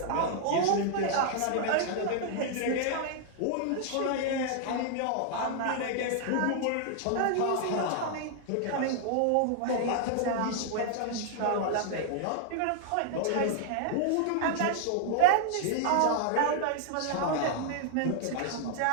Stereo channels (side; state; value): both; different; correlation -0.01